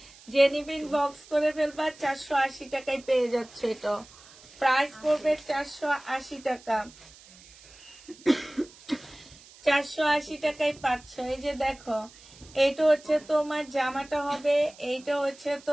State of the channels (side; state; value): right; noise; hiss, 22 dB below the sound